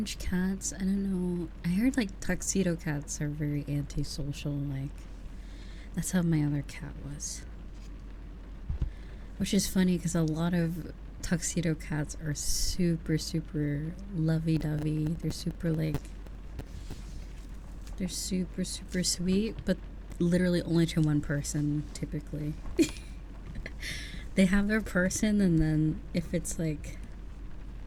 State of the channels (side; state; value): both; identical; correlation 1.00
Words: cats, I don't know. I heard like tuxedo cats are very antisocial, like that's how my other cat was. Which is funny because a lot of tuxedo cats are super, super lovey-dovey. They're super, like, they're super, super sweet, but literally only to one person, typically. They have their person, and then if it's, like,